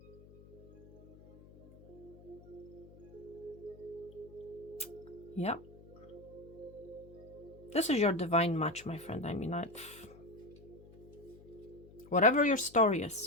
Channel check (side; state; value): left; noise; hum, 21 dB below the sound